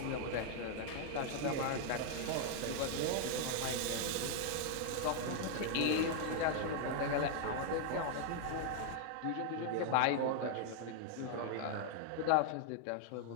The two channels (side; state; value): both; different; correlation 0.00